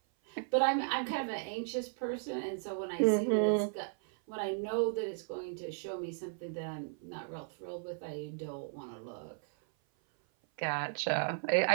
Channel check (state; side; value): silent; left; 54 dB below the other